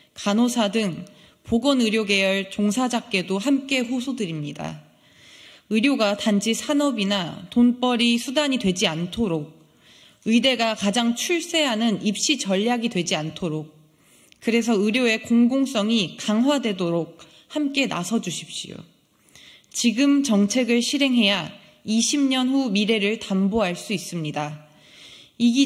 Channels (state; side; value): identical; both; correlation 1.00